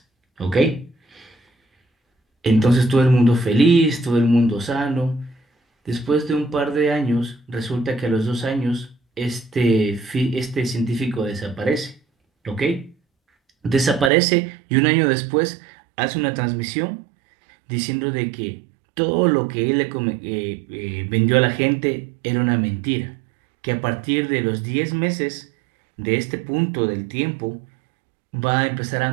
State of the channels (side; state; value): left; drops out; at 14.1 s